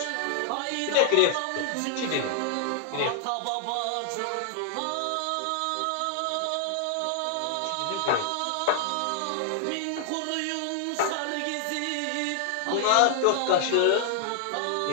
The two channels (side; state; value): both; different; correlation -0.01